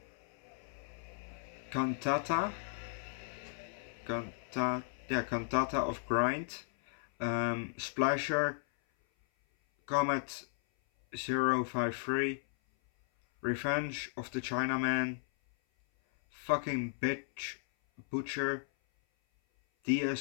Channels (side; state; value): right; silent; 54 dB below the other